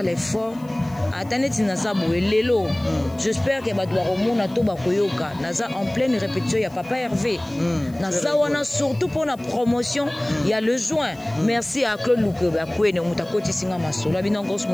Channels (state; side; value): noise; left; hiss, 27 dB below the sound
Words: l'effort. Attendez naza boye lelo. J'espère que bato ba komona to ba koyoka. Naza en pleine répétition ya Papa Hervé. Naza wana surtout pour la promotion, il y a le juin. Merci à Claude Luke ba kwene muta koti singa masola bino Cos